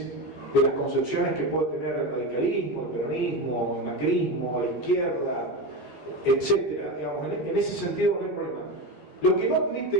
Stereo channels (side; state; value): right; late; 15 ms